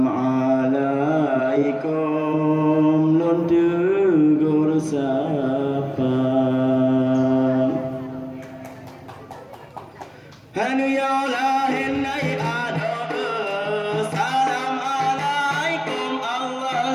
alaikum nun tegur sapa hanu ya lahin ay ado salam alaikum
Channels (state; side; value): identical; both; correlation 1.00